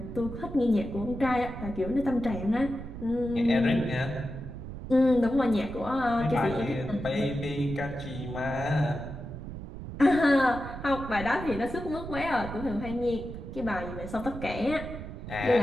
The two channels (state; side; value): noise; right; rumble, 9 dB below the sound